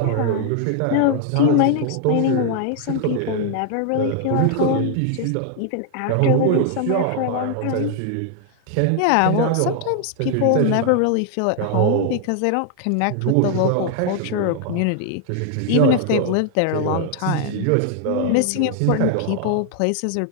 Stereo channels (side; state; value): both; different; correlation 0.00